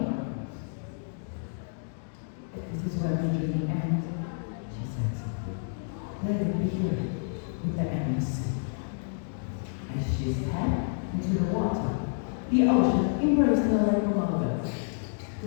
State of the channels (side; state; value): right; silent; digital silence